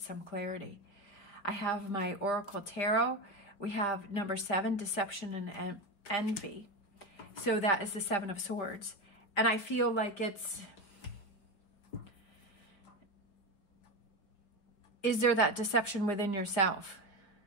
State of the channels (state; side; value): late; right; 5.0 ms